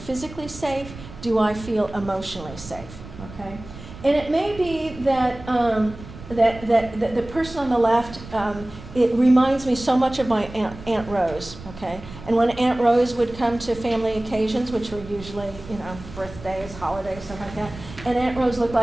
safe? Do I feel emotionally safe? Okay? And it may be that that the person on the left, it reminds me so much of my Aunt Rose, okay? And when Aunt Rose would come to family occasions, which were usually, birthdays, holidays, stuff like that, and Aunt Rose looked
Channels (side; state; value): right; noise; rumble, 15 dB below the sound